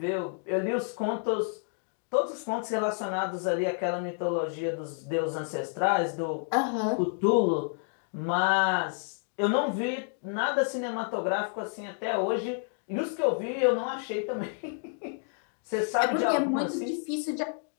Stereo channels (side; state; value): right; silent; 56 dB below the other